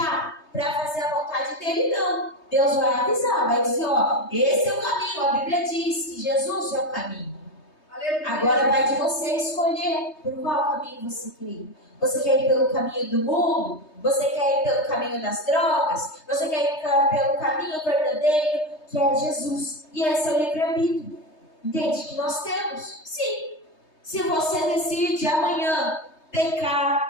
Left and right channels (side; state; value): right; late; 3.2 ms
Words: para fazer a vontade dele, não. Deus vai avisar, vai dizer, ó, esse é o caminho. A Bíblia diz que Jesus é o caminho. Agora vai de você escolher por qual caminho você quer ir. Você quer ir pelo caminho do mundo? Você quer ir pelo caminho das drogas? Você quer ir pelo caminho verdadeiro, que é Jesus? E esse é o livre-arbítrio. Entende? Que nós temos. Sim. Se você decide amanhã